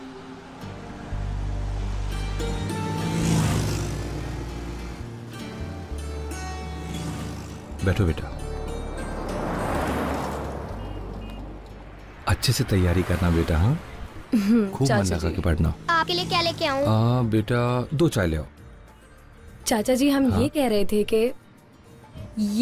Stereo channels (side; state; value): both; identical; correlation 1.00